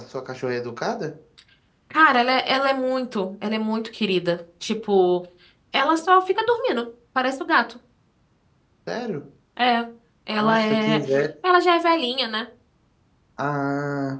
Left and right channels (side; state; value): both; identical; correlation 1.00